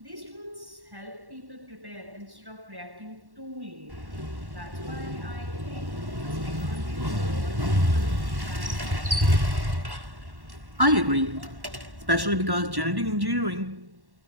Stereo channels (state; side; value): late; left; 1.1 ms